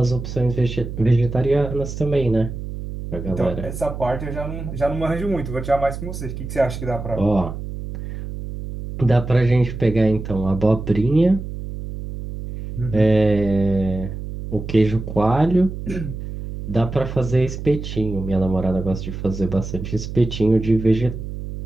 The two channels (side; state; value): right; noise; hum, 8 dB below the sound